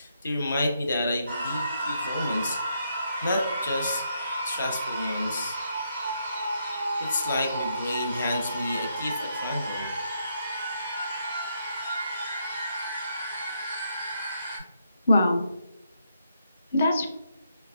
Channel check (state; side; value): inverted; both; correlation -0.77